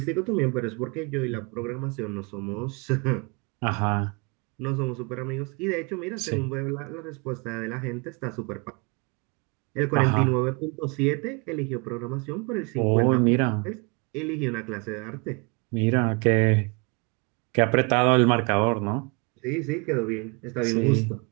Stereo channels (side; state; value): left; quieter; 31.1 dB